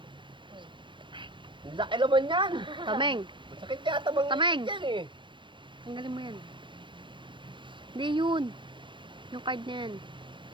Ang laki naman yan. Tameng. Masakit yata mga Tameng. yan eh. Tanggalin mo yan. Hindi yun. Yung card na yan.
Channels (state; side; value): late; left; 0.23 ms